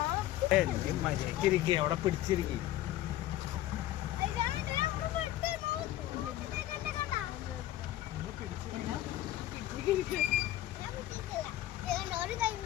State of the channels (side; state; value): right; quieter; 14.1 dB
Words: മര്യാദക്കിരിക്കുക, അവിടെ പിടിച്ചിരിക്കും.